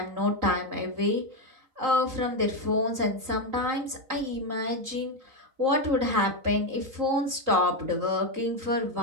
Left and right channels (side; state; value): left; late; 3.8 ms